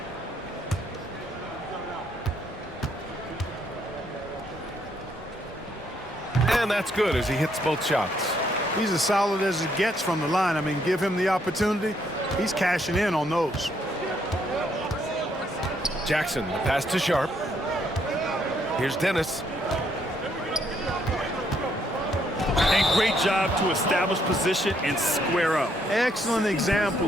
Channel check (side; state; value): both; normal; correlation 0.72